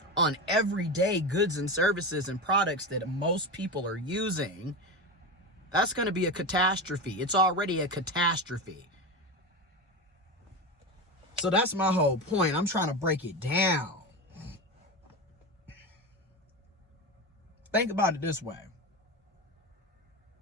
on everyday goods and services and products that most people are using, that's going to be a catastrophe. It's already a catastrophe. So that's my whole point. I'm trying to break it down. Think about it this way.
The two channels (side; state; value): both; normal; correlation 0.20